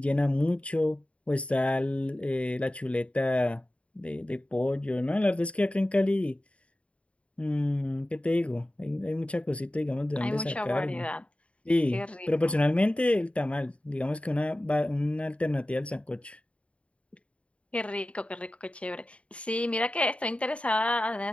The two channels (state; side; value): late; right; 0.062 ms